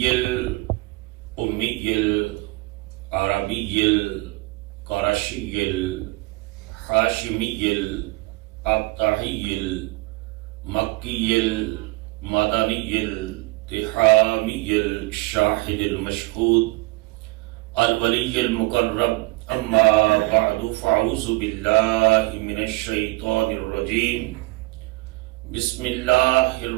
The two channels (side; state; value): left; quieter; 23.3 dB